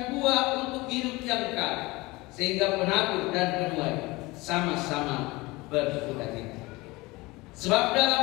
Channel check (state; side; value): quieter; right; 22.3 dB